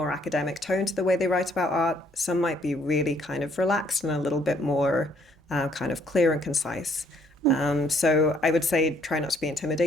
academic tone to the way they write about art. Some might be really kind of relaxed and a little bit more kind of clear and concise. So I would say try not to be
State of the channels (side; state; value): both; normal; correlation 0.66